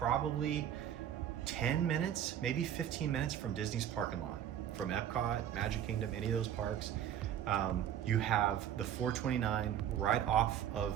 10 minutes, maybe 15 minutes from Disney's parking lot, from Epcot, Magic Kingdom, any of those parks. You have the 429 right off of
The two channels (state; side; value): quieter; left; 10.2 dB